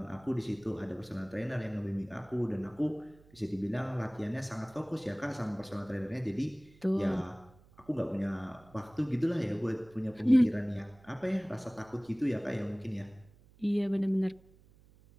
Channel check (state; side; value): noise; right; hum, 26 dB below the sound